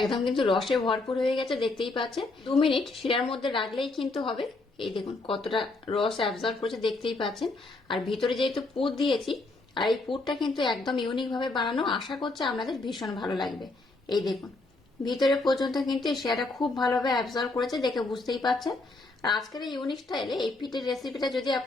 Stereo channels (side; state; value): right; quieter; 3.2 dB